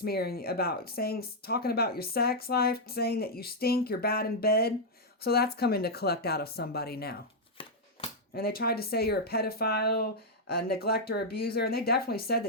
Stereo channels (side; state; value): both; normal; correlation -0.03